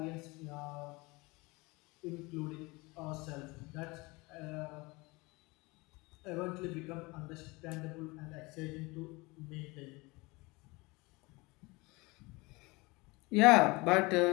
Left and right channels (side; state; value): right; quieter; 24.5 dB